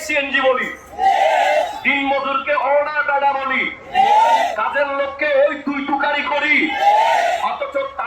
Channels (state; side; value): identical; both; correlation 1.00